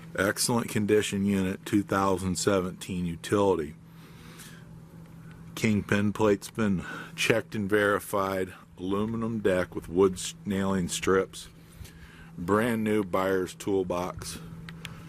excellent condition unit 2017 utility. Kingpin plate's been checked and verified, aluminum deck with wood nailing strips, brand new buyer's toolbox.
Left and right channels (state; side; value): identical; both; correlation 1.00